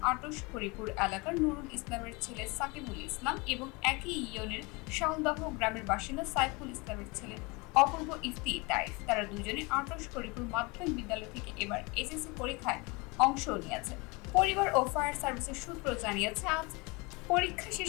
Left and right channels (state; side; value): quieter; right; 26.9 dB